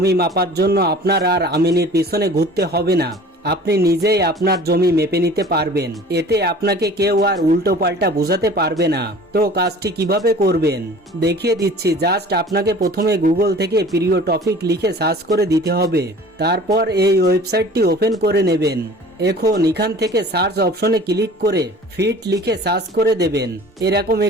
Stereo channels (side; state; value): both; normal; correlation 0.45